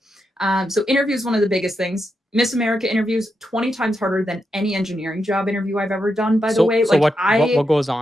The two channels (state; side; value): normal; both; correlation 0.85